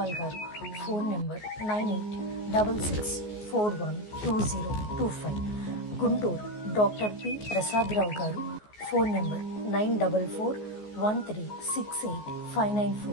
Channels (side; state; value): right; late; 14 ms